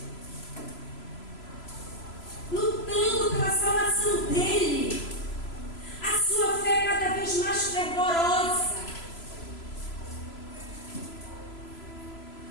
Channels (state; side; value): late; right; 3.0 ms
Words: lutando pela salvação dele, a sua fé cada vez mais fervorosa.